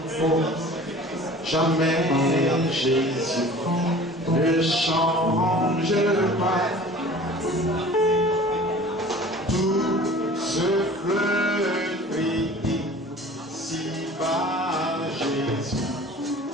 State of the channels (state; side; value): normal; both; correlation 0.44